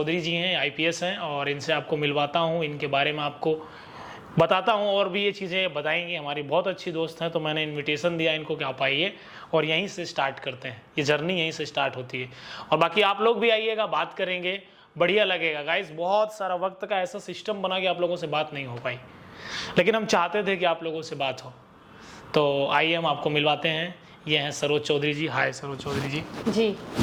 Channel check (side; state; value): both; identical; correlation 1.00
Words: जी हैं, आईपीएस हैं, और इनसे आपको मिलवाता हूँ, इनके बारे में आपको बताता हूँ और भी ये चीज़ें बताएंगी। हमारी बहुत अच्छी दोस्त हैं, तो मैंने इनविटेशन दिया इनको कि आप आइए और यहीं से स्टार्ट करते हैं। ये जर्नी यहीं से स्टार्ट होती है और बाकी आप लोग भी आइएगा, बात करेंगे, बढ़िया लगेगा। गाइस बहुत सारा वक्त का ऐसा सिस्टम बना कि आप लोगों से बात नहीं हो पाई, लेकिन हम चाहते थे कि आप लोगों से बात हो। तो आइए हम आपको मिलवाते हैं। ये हैं सरोज चौधरी जी। हाय सरोज चौधरी जी। जी